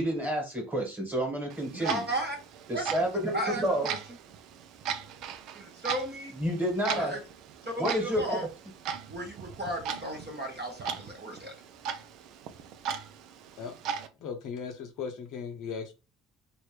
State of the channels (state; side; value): normal; both; correlation 0.39